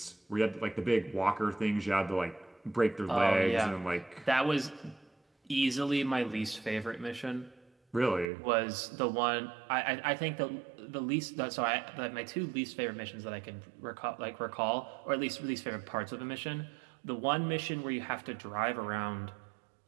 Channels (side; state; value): left; drops out; at 8.2 s